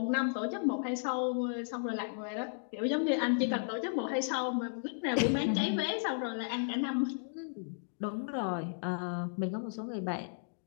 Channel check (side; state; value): right; silent; digital silence